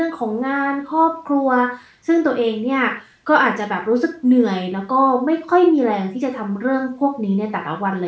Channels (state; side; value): identical; both; correlation 1.00